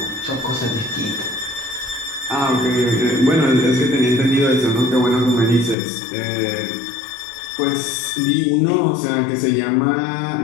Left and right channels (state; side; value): drops out; right; at 5.8 s